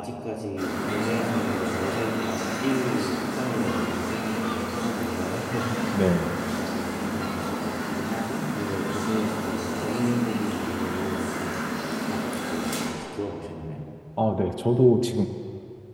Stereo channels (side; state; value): both; identical; correlation 1.00